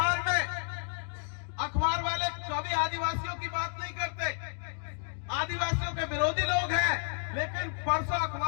में, अखबार वाले कभी आदिवासियों की बात नहीं करते, आदिवासियों के विरोधी लोग हैं, लेकिन परसों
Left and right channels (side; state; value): right; silent; 57 dB below the other